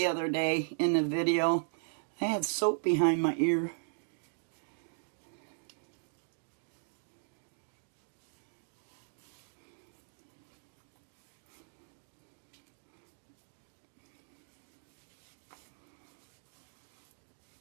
other day in the video. I had soap behind my ear.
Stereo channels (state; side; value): silent; left; digital silence